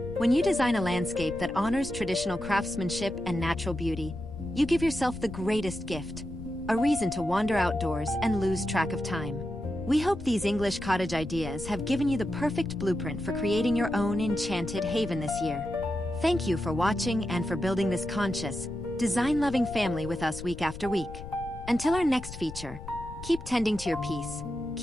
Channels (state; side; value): noise; left; rumble, 12 dB below the sound